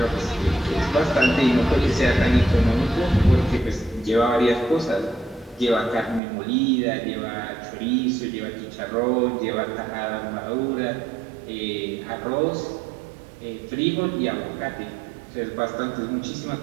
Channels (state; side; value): drops out; left; at 6.2 s